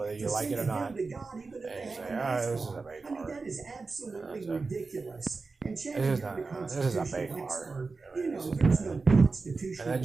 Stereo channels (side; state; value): left; quieter; 4.1 dB